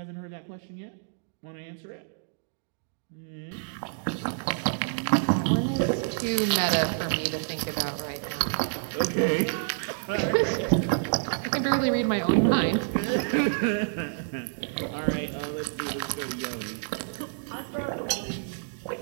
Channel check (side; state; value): left; silent; digital silence